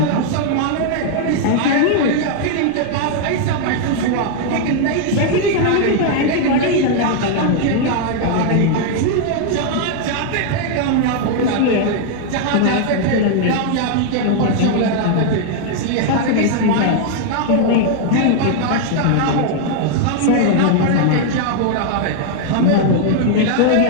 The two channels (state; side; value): different; both; correlation 0.00